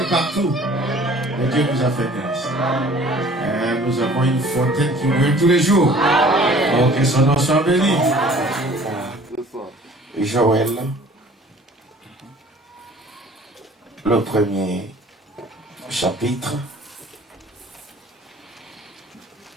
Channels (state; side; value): normal; both; correlation 0.51